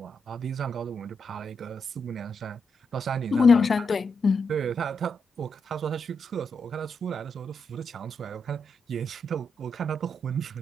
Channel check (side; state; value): both; normal; correlation 0.82